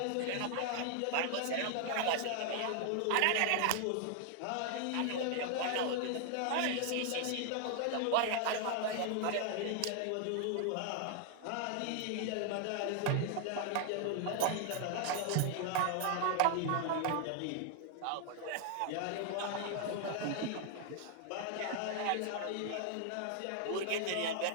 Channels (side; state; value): both; different; correlation 0.00